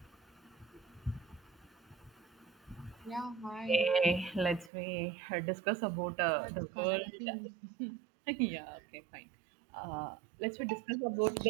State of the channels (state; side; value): drops out; left; at 4.7 s